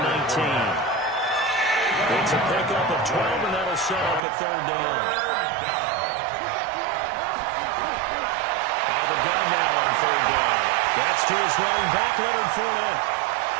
19. It's a pickup of 12, and that'll set up a 3rd down. Out of the gun now on 3rd down. That's to his running back, Leonard Fournette.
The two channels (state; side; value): drops out; left; at 4.2 s